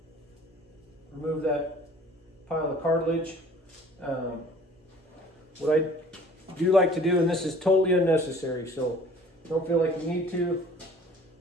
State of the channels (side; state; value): both; normal; correlation 0.50